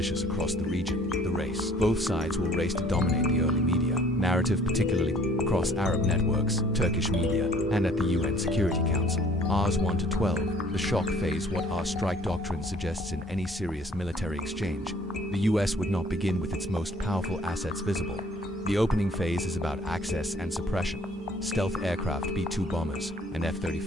across the region, the race. Both sides will race to dominate the early media narrative, particularly across Arab networks, Turkish media, and at the UN Security Council. Rs 1 to 12, the shock phase. What our strike doctrine suggests in any serious military exchange, the US would not begin with its most powerful assets visible. The opening phase is about access and suppression. Stealth aircraft, B-2 bombers, and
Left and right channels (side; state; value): both; normal; correlation 0.56